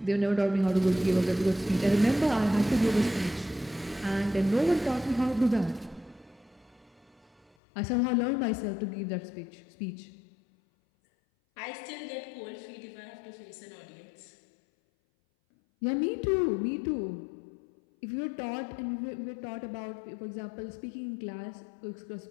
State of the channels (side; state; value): right; drops out; at 7.5 s